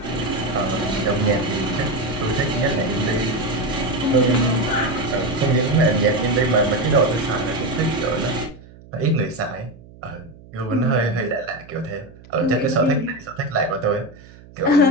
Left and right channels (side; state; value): right; noise; hum, 22 dB below the sound